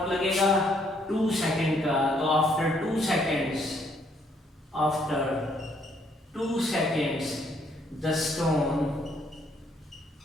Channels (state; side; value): normal; both; correlation 0.68